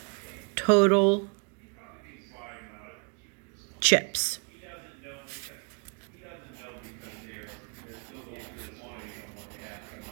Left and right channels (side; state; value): left; quieter; 35.7 dB